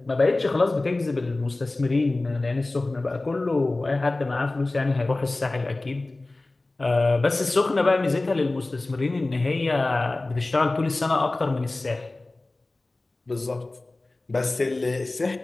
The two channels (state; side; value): quieter; right; 3.0 dB